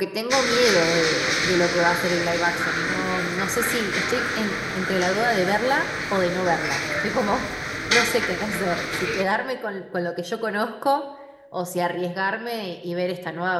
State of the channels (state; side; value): identical; both; correlation 1.00